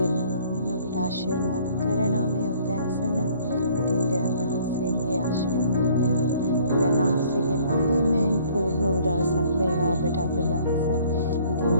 නාමයෙන් ඔබට ආශිර්වාද කරනවා මේ උදෑසන. ඉතින් දෙවියන් වහන්සේගේ ආශිර්වාදයන් දෙවියන් වහන්සේගේ මහිමෙන් පූර්ණ වූ දවසක් වේවා ඔබට අද දවස. ඉතින්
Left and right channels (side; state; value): both; inverted; correlation -0.57